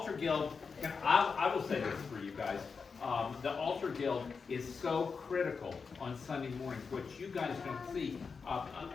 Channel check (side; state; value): right; quieter; 5.2 dB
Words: Guild, I will say this for you guys. The Altar Guild is so critical on Sunday mornings, which you guys don't see.